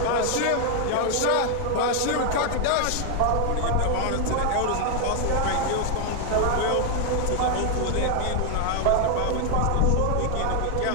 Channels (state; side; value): different; both; correlation 0.00